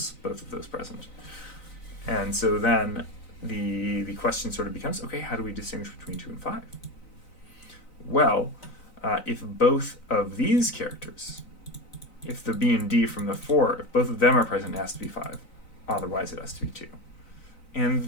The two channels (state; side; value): late; right; 3.9 ms